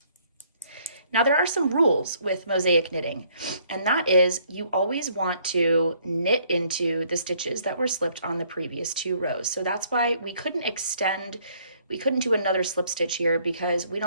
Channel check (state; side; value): inverted; both; correlation -0.64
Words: Now there are some rules with mosaic knitting, and that is you always want to knit into the stitches that were slipped on the previous 2 rows. So that's why we couldn't do another slip stitch here, because we